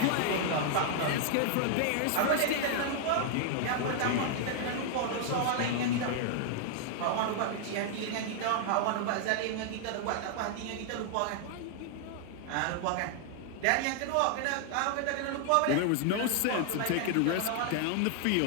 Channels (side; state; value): both; different; correlation 0.00